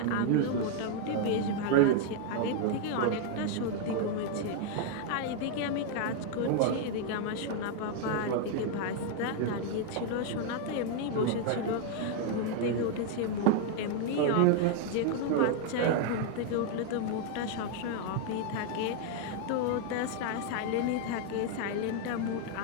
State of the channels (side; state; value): both; different; correlation 0.00